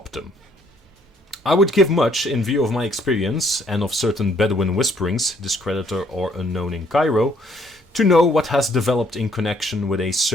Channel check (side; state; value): both; normal; correlation 0.65